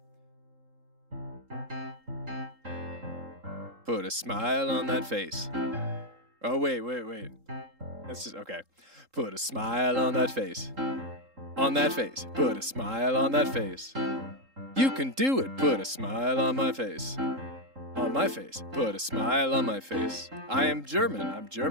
Put a smile on that face. Oh wait. That's just okay. Put a smile on that face. On that face. Put a smile on that face. You can do it. Put a smile on my face. On my face. Put a smile on my face. I am German. I'm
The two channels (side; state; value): left; late; 3.7 ms